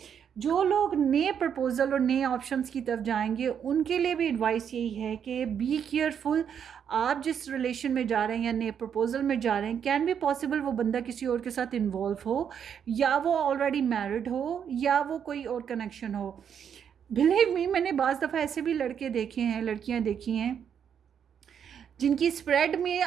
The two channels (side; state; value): left; quieter; 8.1 dB